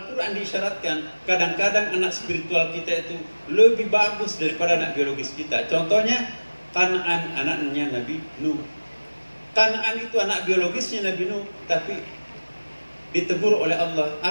diisyaratkan, kadang-kadang anak spiritual kita itu lebih bagus daripada anak biologis kita. Contohnya, Kan'an, anaknya Nabi Nuh. Kan'an itu anak biologisnya Nabi Nuh, tapi ditegur oleh Allah.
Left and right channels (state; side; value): inverted; both; correlation -1.00